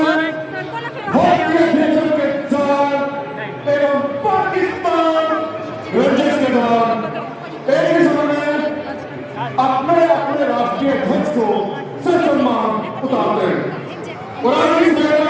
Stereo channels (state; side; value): identical; both; correlation 1.00